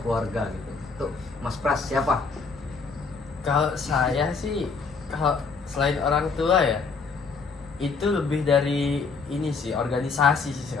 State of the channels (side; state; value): right; quieter; 4.8 dB